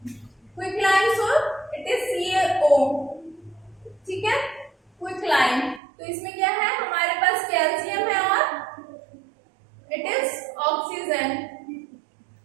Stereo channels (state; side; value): drops out; left; at 5.8 s